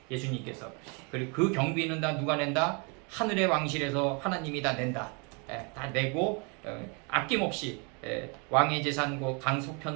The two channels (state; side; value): quieter; left; 33.4 dB